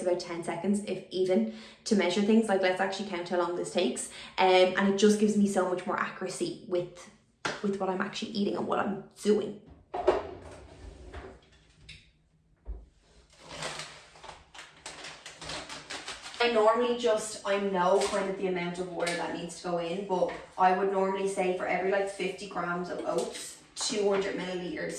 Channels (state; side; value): identical; both; correlation 1.00